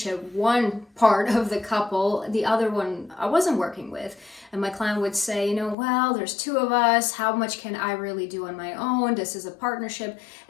one part of the couple, the other one I wasn't working with. And my client would say, well, there's two of us. How much can I really do on my own? This is a partnership.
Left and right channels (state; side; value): drops out; right; at 5.8 s